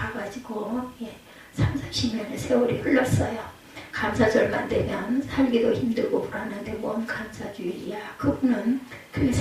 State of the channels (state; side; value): identical; both; correlation 1.00